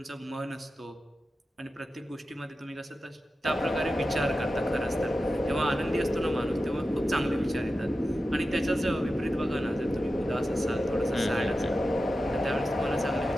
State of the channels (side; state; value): both; normal; correlation 0.92